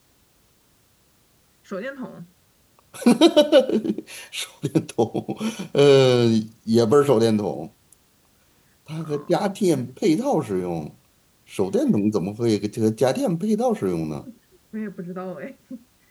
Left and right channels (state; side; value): identical; both; correlation 1.00